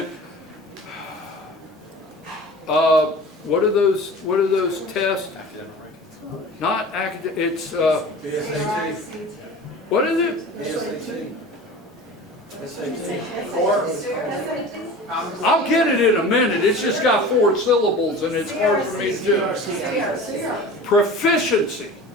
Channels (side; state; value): both; normal; correlation 0.38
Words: what are those tests? Not academic, it's what is it? I'll get it in a minute. It's just got 4 syllables and it's hard for me to do. Proficiency.